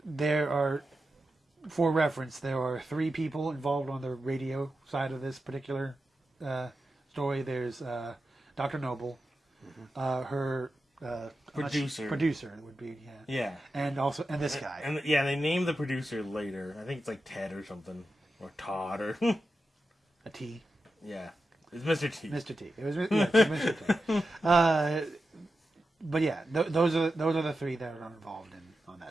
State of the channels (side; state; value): both; normal; correlation 0.90